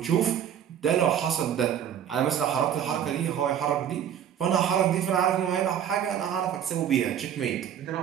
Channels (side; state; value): left; quieter; 9.4 dB